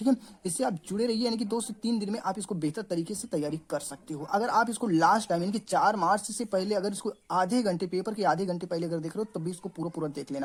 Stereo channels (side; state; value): both; identical; correlation 1.00